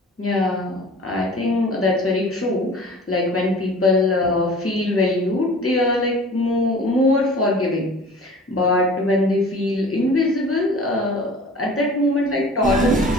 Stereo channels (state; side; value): normal; both; correlation 0.44